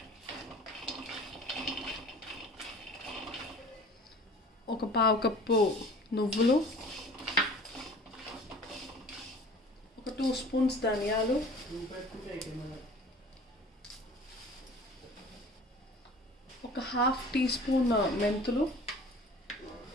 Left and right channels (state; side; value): normal; both; correlation 0.46